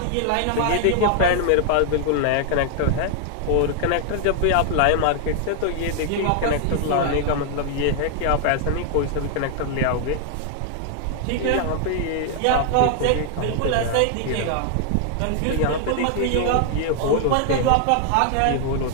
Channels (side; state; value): both; different; correlation 0.00